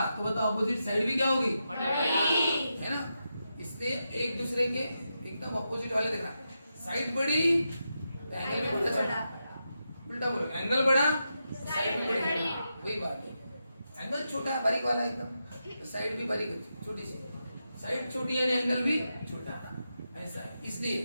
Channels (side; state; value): both; inverted; correlation -0.87